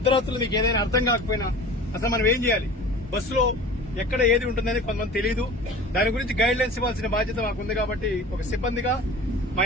మీకు ఏదైనా అర్థం కాకపోయినా అసలు మనం ఏం చేయాలి? బస్సులో ఎక్కడ ఏది ఉంటుందని కొంతమంది తెలియదు. దాని గురించి గైడ్ లైన్స్ ఇవ్వాల్సిన బాధ్యత మాకు ఉంది. కాబట్టి ఒక సిబ్బందిగా మా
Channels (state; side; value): normal; both; correlation 0.39